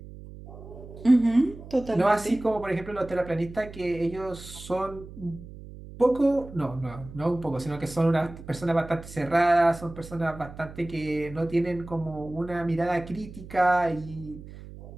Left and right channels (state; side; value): noise; right; hum, 15 dB below the sound